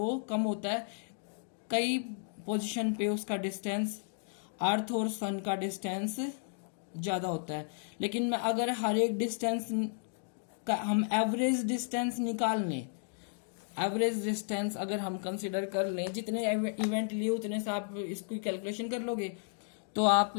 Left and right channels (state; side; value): silent; right; digital silence